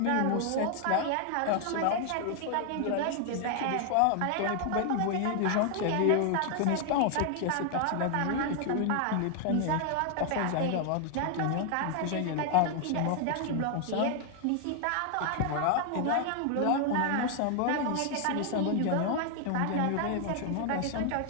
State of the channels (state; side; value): different; both; correlation 0.00